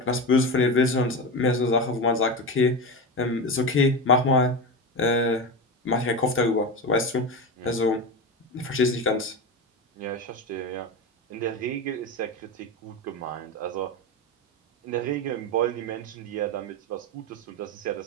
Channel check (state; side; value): normal; both; correlation 0.20